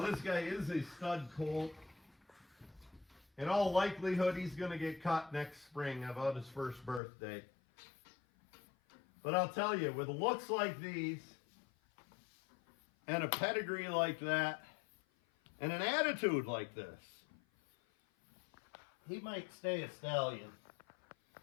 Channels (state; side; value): drops out; right; at 7.0 s